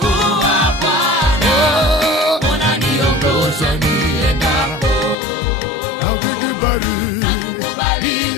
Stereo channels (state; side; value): drops out; right; at 5.2 s